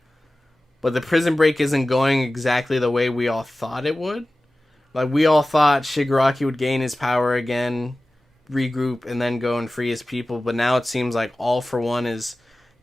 But the prison break isn't going exactly the way we all thought it would. Like, we all thought Shigaraki would gain his power again, regroup, and then go and free his people. But now it seems like All For One is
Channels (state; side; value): normal; both; correlation 0.96